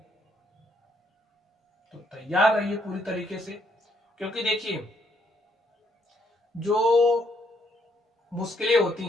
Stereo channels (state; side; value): normal; both; correlation 0.71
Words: तो तैयार रहिए पूरी तरीके से, क्योंकि देखिए जो मुश्किलें होती